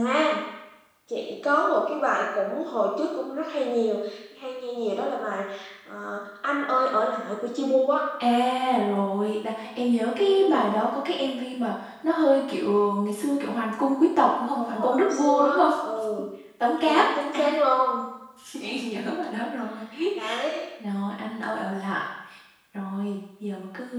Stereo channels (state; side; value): identical; both; correlation 1.00